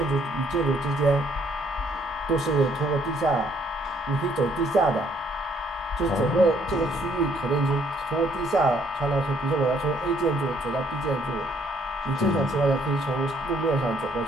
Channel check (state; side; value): normal; both; correlation 0.66